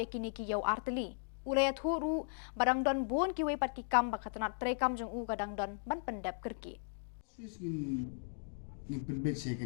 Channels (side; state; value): right; silent; digital silence